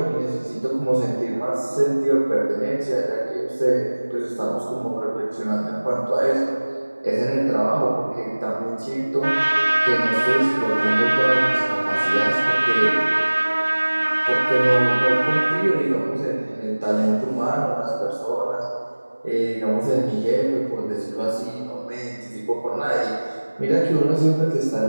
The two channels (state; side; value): inverted; both; correlation -1.00